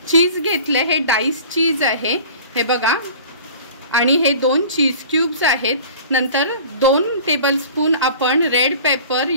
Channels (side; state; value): both; inverted; correlation -0.43